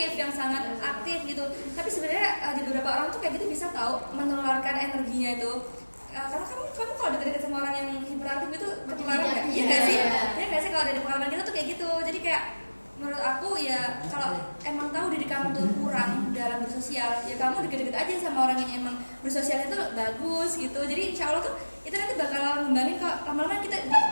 yang sangat aktif gitu. Tapi sebenarnya di beberapa orang tuh kayak gitu bisa tahu menularkan energinya itu. Karena kamu kalau deket-deket sama orang yang hiperaktif itu ketularan nggak? Iya nggak sih? Iya nggak sih kalau dari pengalaman kita tuh kayak gitu. Jadi kayak menurut aku ya kalau emang tahu diri kamu tuh kurang dalam bersosial, ya kamu deket-deket aja sama orang yang emang bersosialnya tuh bagus gitu. Jadi insya Allah tuh itu nanti bakal ngembangin kok. Lama-lama kita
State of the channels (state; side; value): inverted; both; correlation -1.00